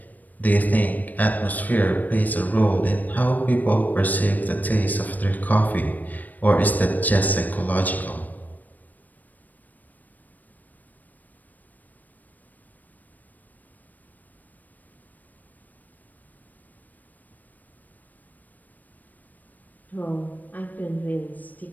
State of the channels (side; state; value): right; late; 0.082 ms